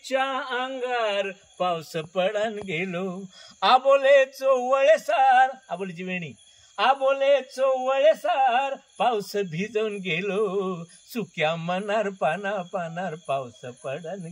अंगार पाऊस पडान गेलो. आबोले चोवळेसार, आबोलीची वेणी, आबोले चोवळेसार पाऊस भिजून गेलो. सुक्या मनार पाना पानार पाऊस पडन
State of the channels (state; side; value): identical; both; correlation 1.00